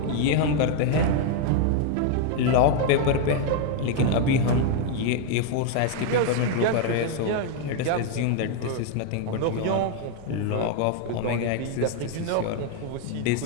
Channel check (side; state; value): both; different; correlation 0.00